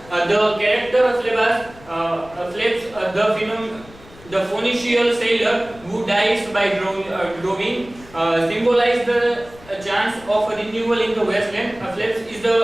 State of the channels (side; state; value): left; noise; rumble, 22 dB below the sound